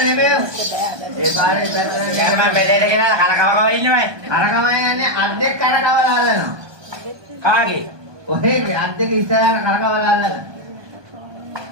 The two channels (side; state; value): left; late; 1.2 ms